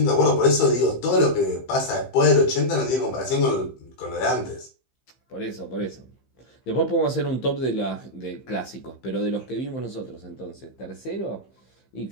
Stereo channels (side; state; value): right; late; 15 ms